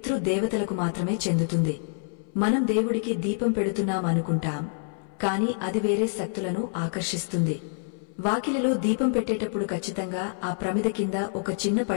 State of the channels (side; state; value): right; silent; 60 dB below the other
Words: మాత్రమే చెందుతుంది. మనం దేవుడికి దీపం పెడుతున్నామనుకుంటాం, కాని అది వేరే శక్తులను ఆకర్షిస్తుంది. వాకిలిలో దీపం పెట్టేటప్పుడు ఖచ్చితంగా ఆ ప్రమిద కింద ఒక చిన్న